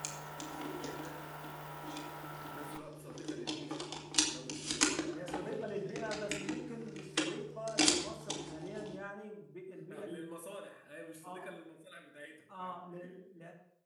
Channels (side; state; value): both; identical; correlation 1.00